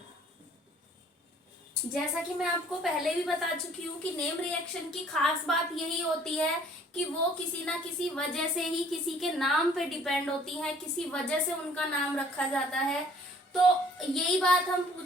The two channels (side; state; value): both; normal; correlation 0.56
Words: जैसा कि मैं आपको पहले भी बता चुकी हूँ कि नेम रिएक्शन की खास बात यही होती है कि वो किसी ना किसी वजह से ही किसी के नाम पे डिपेंड होती है, किसी वजह से उनका नाम रखा जाता है। तो यही बात हम